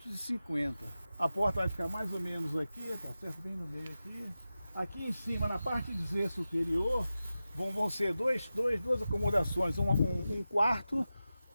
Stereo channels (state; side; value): inverted; both; correlation -0.93